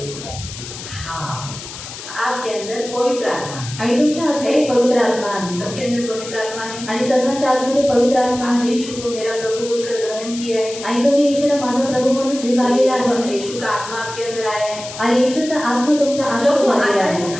हाँ, आपके अंदर पवित्र आत्मा, आणि तुमच्या आतमध्ये पवित्र आत्मा आहे. सबके अंदर पवित्र आत्मा है। आणि सर्वांच्या आतमध्ये पवित्र आत्मा आपने आहे. यीशु को मेरा प्रभु बोलकर ग्रहण किया है। आणि तुम्ही येशूला माझा प्रभू म्हणून स्वीकारलेला आहे. यीशु का आत्मा आपके अंदर आया है। आणि येशूचा आत्मा तुमच्या जब वो आतमध्ये आता आहे. है तो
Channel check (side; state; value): left; noise; hiss, 12 dB below the sound